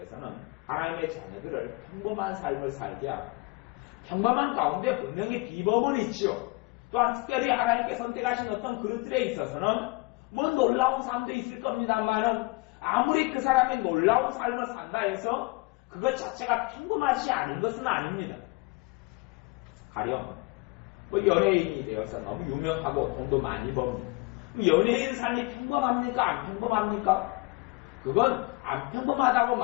하나님의 자녀들을 평범한 삶을 살게 합니다. 평범한 가운데 분명히 비법은 있죠. 또한 특별히 하나님께 선택하신 어떤 그릇들에 있어서는 뭐 놀라운 삶도 있을 겁니다만은 아무리 그 사람이 놀라운 삶을 산다 해서 그것 자체가 평범하지 않은 것은 아닙니다. 가령 뭐 연예인이 되어서 너무 유명하고 돈도 많이 법니다. 연예인 삶이 평범합니까? 안 평범합니까? 그건 안 평범하다고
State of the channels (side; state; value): right; quieter; 25.0 dB